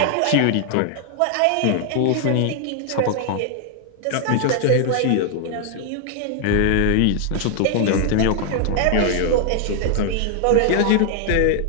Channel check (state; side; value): different; both; correlation 0.00